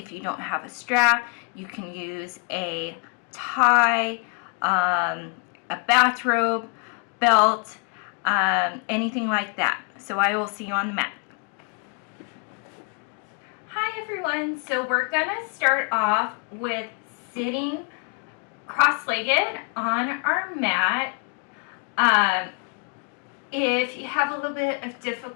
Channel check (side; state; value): right; quieter; 37.0 dB